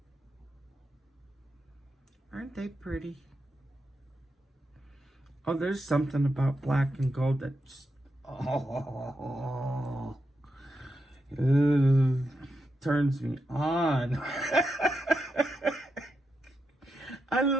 Aren't they pretty? Oh, there's something about black and gold that just... Oh, turns me on. I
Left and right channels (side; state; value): both; normal; correlation 0.85